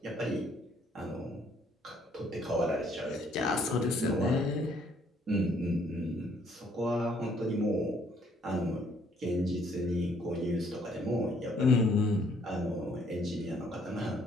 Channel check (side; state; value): both; normal; correlation 0.65